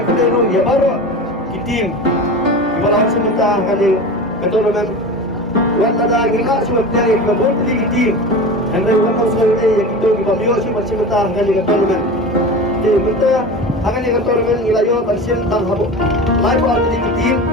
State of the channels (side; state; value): both; normal; correlation 0.30